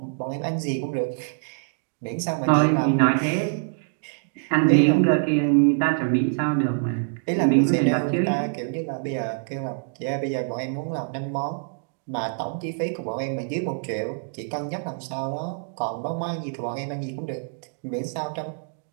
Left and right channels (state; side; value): silent; left; digital silence